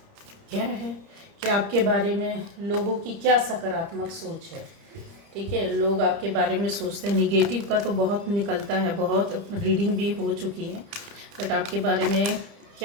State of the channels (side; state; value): left; late; 30 ms